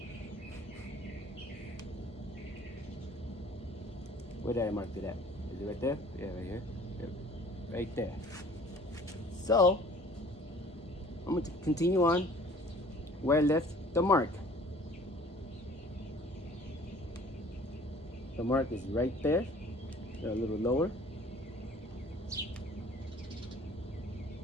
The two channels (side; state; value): both; normal; correlation 0.51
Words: Where did I mark it at? Is it right there? Yeah, right here. Yep. Right there. So, I'm going to continue on where I left the mark. The mark is right there. A little lower.